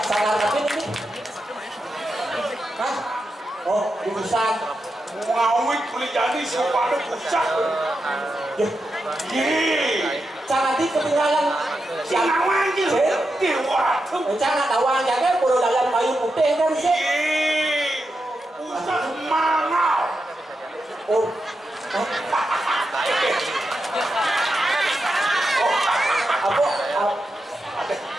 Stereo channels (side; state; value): both; normal; correlation 0.87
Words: Salah tapi ini. Hah? Oh, dipesan. Ngawit boleh jadi sepadu pusat. Jangan di ketinggalan. Sinawang gitu. Diwatu. Jangan tawang jangan perlu dalam kayu putih kan sih. Pusat mangau. Oh. Apa?